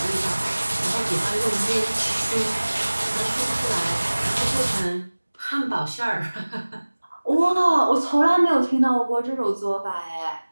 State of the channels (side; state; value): both; inverted; correlation -1.00